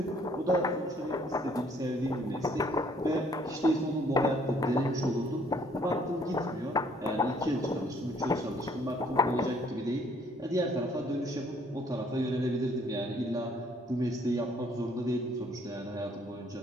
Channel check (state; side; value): normal; both; correlation 0.63